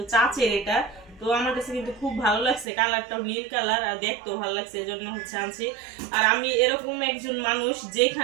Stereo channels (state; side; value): drops out; left; at 2.7 s